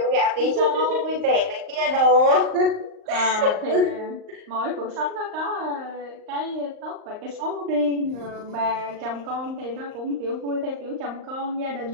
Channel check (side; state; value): left; late; 38 ms